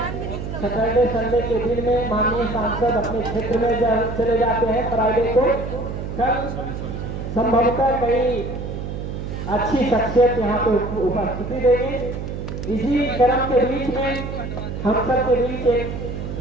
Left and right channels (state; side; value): noise; right; hum, 6 dB below the sound